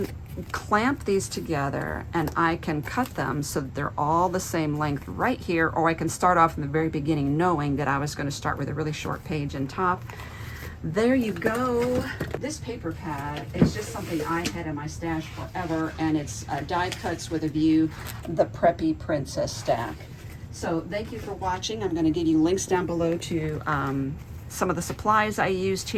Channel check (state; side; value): identical; both; correlation 1.00